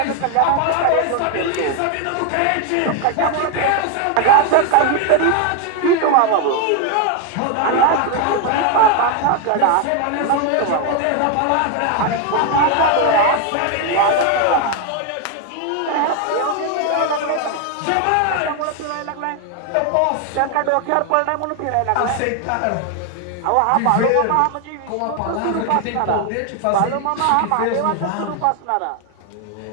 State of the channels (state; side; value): different; both; correlation 0.01